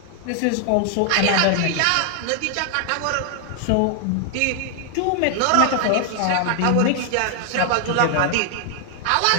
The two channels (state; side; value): different; both; correlation 0.00